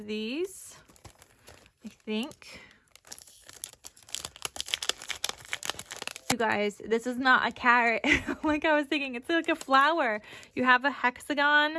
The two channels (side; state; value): both; identical; correlation 1.00